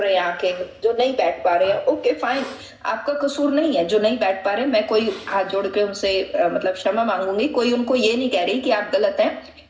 रहे हैं आंखें, जो नहीं बैठ पा रहे हैं, ओके फाइन, आपका कसूर नहीं है जो नहीं बैठ पा रहे. मैं कोई हाथ जोड़ के उनसे मतलब क्षमा मांगूंगी, कोई उनको ये नहीं कह रही कि आप गलत हैं,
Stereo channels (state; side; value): identical; both; correlation 1.00